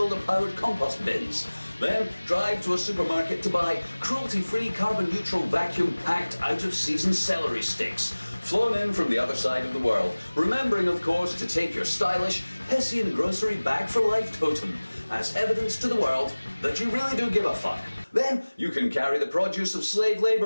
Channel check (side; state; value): both; inverted; correlation -1.00